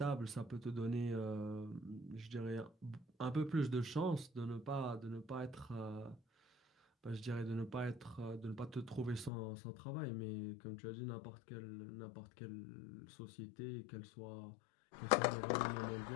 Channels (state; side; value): drops out; right; at 9.3 s